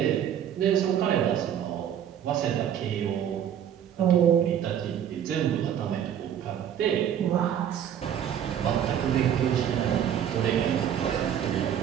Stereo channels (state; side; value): quieter; left; 9.5 dB